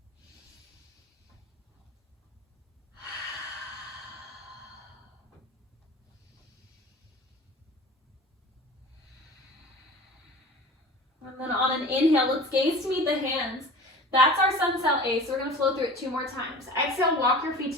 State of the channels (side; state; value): both; normal; correlation 0.39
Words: And then on an inhale, let's gaze to meet the hands. That's our sun cell A, so we're going to flow through it 2 more times. Exhale, walk your